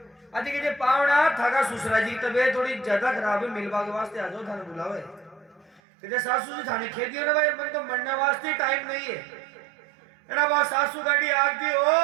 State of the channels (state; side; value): drops out; left; at 5.8 s